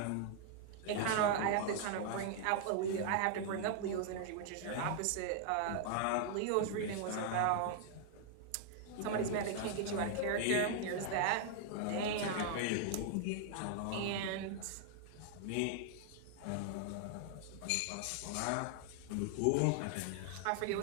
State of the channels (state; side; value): different; both; correlation 0.00